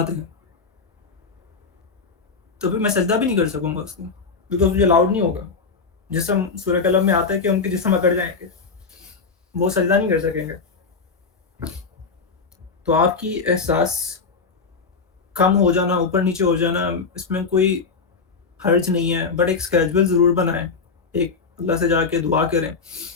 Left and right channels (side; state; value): right; quieter; 4.8 dB